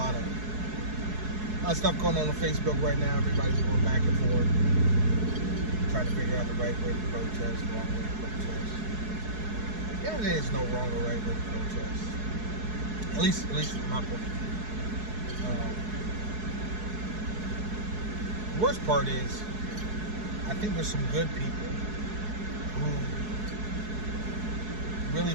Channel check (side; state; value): left; late; 4.7 ms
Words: of stuff going on Facebook right now. Everybody's going back and forth, trying to figure out the right way to protest, wrong way to protest. Yeah, there is no wrong or right way to protest. At least from my point of view. The worst part is, I think there's some good people who really